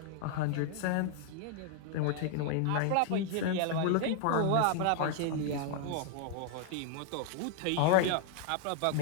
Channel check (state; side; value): different; both; correlation 0.00